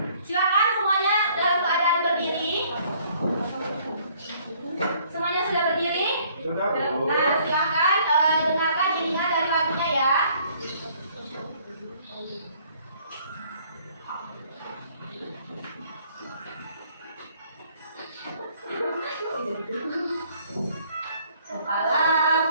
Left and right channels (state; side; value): inverted; both; correlation -0.61